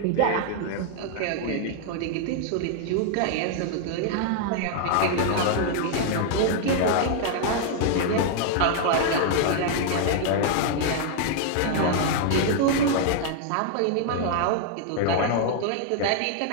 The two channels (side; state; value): both; different; correlation 0.00